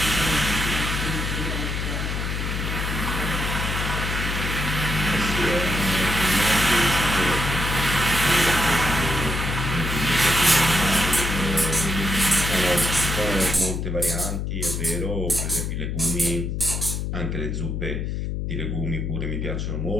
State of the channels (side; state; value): left; noise; hum, 2 dB below the sound